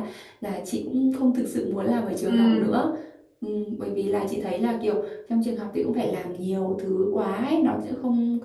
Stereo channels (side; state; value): both; identical; correlation 1.00